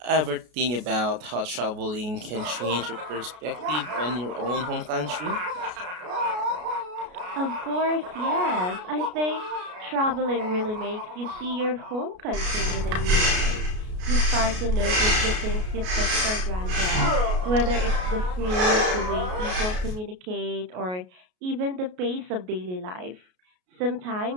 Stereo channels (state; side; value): late; left; 33 ms